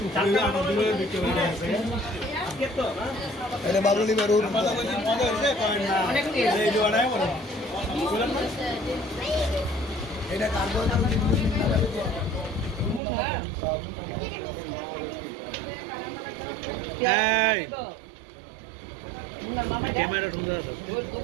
চারটা দূরে বিক্রি হয়ে আছে আজকে তো না এটা বাবুলি বারুর মজা হইছে করেন না অনেক টেস্ট এই জোড়ায় বড় বলেন না এটা কার্বন এই ক্যামেরা ঢুকে আছে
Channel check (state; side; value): drops out; left; at 13.0 s